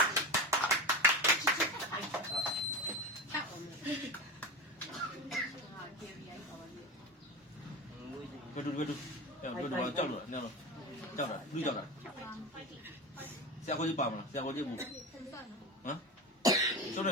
ဘယ်လိုကြောက်လို့နော်ကြောက်တာလူကြောက်တာဆရာကိုကြီးပါမလားဆရာကိုကြီးဘူးဟမ်ကျုပ်လည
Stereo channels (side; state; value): both; normal; correlation 0.25